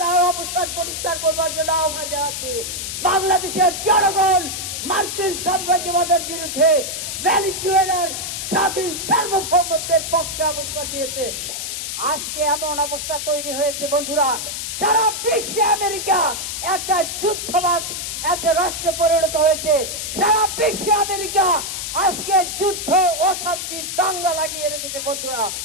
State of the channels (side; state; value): left; noise; hiss, 5 dB below the sound